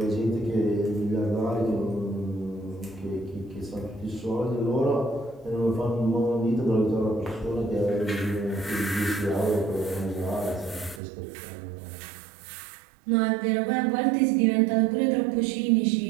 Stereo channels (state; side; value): drops out; left; at 11.0 s